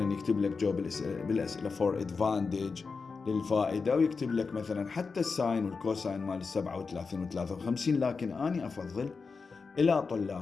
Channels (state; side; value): quieter; right; 4.8 dB